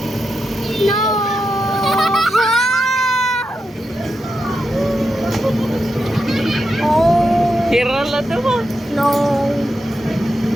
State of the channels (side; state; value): both; normal; correlation 0.87